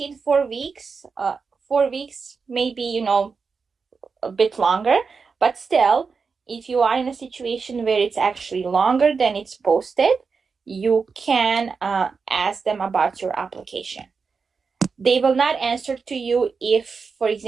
4 weeks, 4 weeks, maybe, a bit longer, but still, if you are in a situation where it's actually longer than it's posted, you can ask them about your application. They will not answer to you if, for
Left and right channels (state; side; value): quieter; left; 5.1 dB